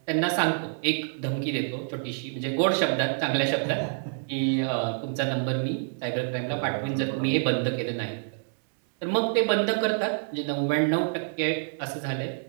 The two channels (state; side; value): silent; left; digital silence